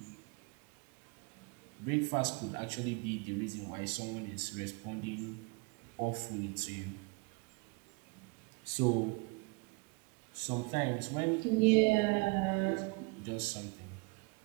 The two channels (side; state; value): left; quieter; 29.2 dB